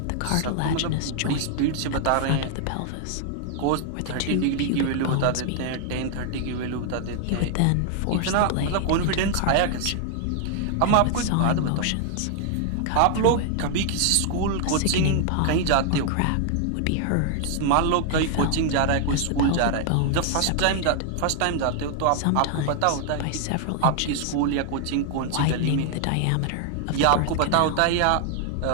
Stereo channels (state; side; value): different; both; correlation 0.00